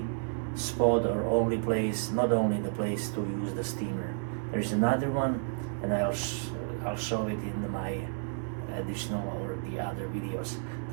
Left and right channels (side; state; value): left; silent; 57 dB below the other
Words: spot or only place, not only the place to use the steamer. There is another one, and I'll show it in my additional or the other videos.